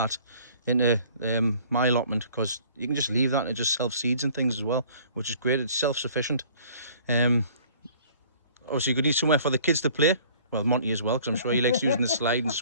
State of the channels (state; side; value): inverted; both; correlation -0.53